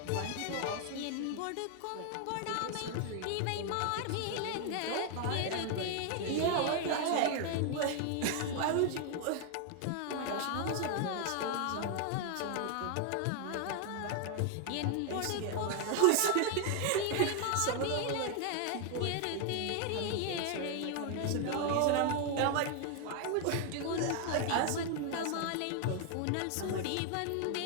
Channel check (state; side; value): different; both; correlation 0.00